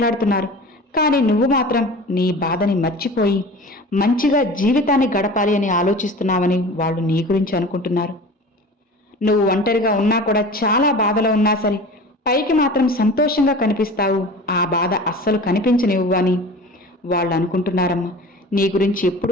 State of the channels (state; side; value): normal; both; correlation 0.38